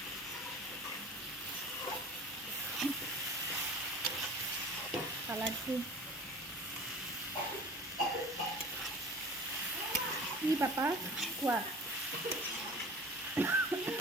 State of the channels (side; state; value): both; normal; correlation 0.41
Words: কালাৰটো কি পাপা কোৱা।